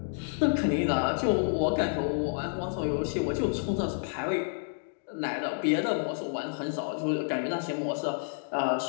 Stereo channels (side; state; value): right; silent; digital silence